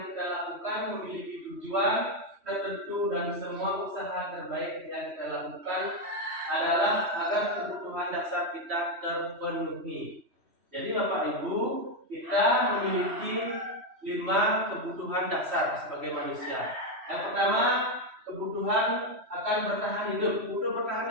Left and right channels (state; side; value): late; left; 3.1 ms